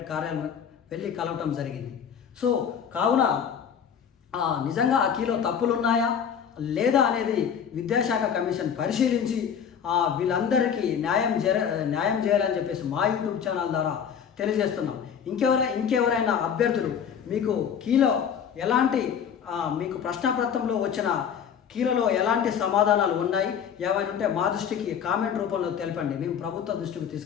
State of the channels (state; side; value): quieter; right; 7.8 dB